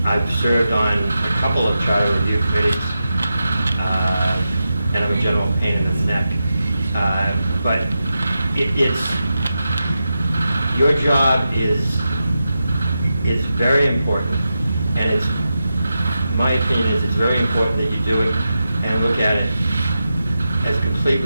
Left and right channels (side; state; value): both; inverted; correlation -0.90